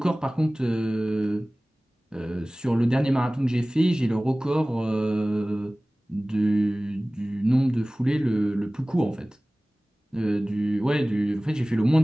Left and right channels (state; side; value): normal; both; correlation 0.98